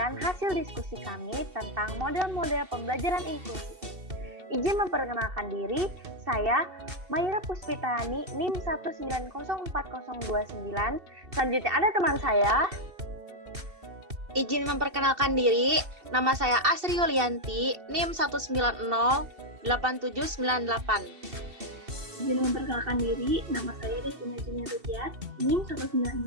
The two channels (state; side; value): late; left; 2.7 ms